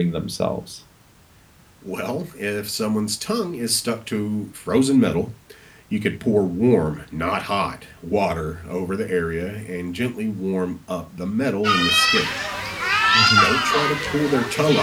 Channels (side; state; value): both; identical; correlation 1.00